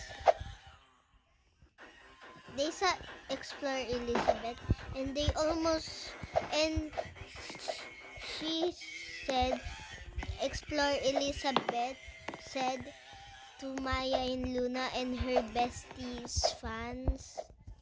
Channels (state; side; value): identical; both; correlation 1.00